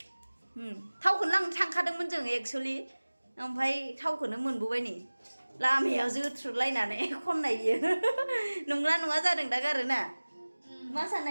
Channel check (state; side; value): inverted; both; correlation -1.00